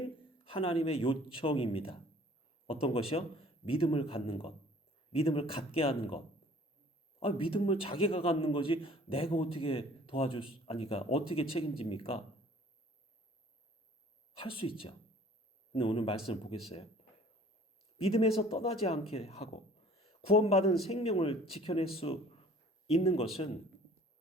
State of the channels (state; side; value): normal; both; correlation 0.52